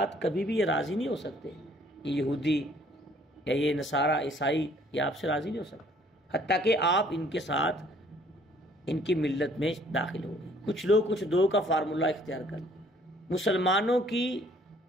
کبھی بھی یہ راضی نہیں ہو سکتے، یہ یہودی یا یہ نصارہ عیسائی یہ آپ سے راضی نہیں ہو سکتے حتیٰ کہ آپ ان کے ساتھ ان کی ملت میں داخل ہو گئے. کچھ لوگ کچھ دو کا فارمولہ اختیار کر. مسلمانوں کی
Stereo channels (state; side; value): normal; both; correlation 0.60